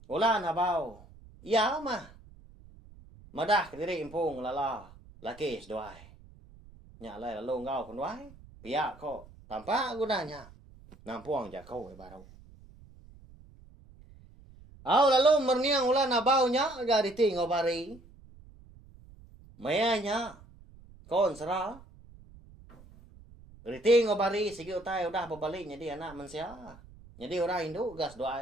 Ulan habau. Ya mah. Madah ke diri impung lala. Laki seduai. Nya lai lalu ngau kunwai. Pihak ko tampak gunanya. Nampuang jakau baru. Au lalu merniang ulan habau nya ga riti ngabari. Mayanya kon serah. Riti ngobari sige utai udah babalik jadi anak mensia. Jadi orang Hindu gas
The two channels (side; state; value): right; noise; rumble, 22 dB below the sound